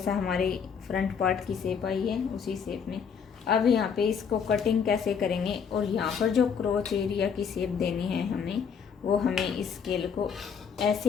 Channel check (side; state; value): right; quieter; 6.7 dB